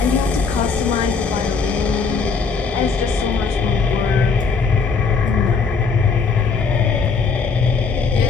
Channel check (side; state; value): right; quieter; 5.1 dB